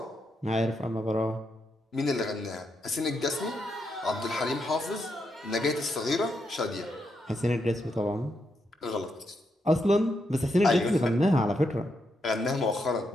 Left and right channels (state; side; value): normal; both; correlation 0.81